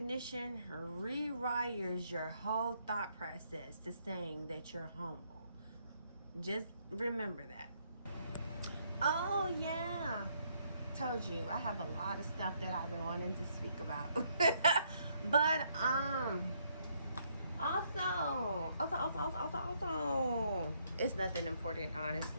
rewires your whole thought process to saying that you're humble. Just remember that. Oh yeah, told you, I have a lot of stuff that I've been wanting to speak about. But also, it's nothing important,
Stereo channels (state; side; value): inverted; both; correlation -0.71